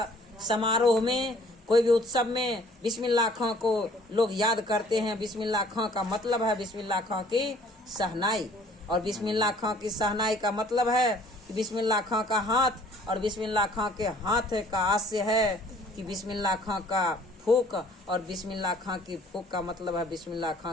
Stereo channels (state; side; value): normal; both; correlation 0.56